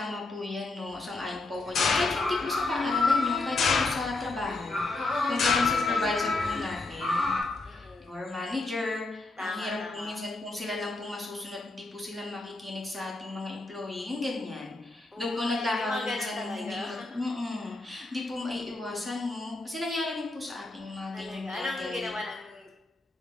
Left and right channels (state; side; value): quieter; right; 3.2 dB